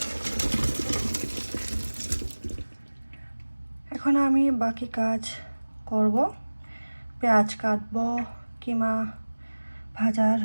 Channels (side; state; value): both; inverted; correlation -1.00